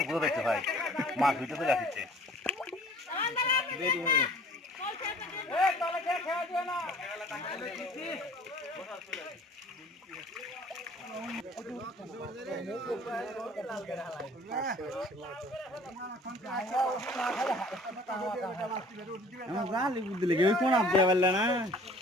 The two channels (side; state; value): both; normal; correlation 0.50